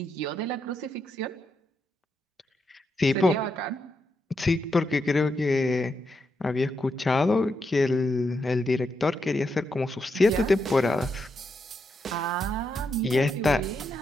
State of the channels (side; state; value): both; normal; correlation 0.82